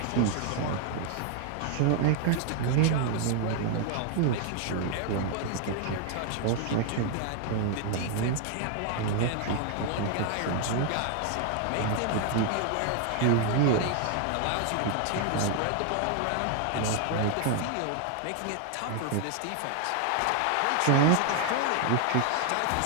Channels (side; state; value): both; different; correlation 0.00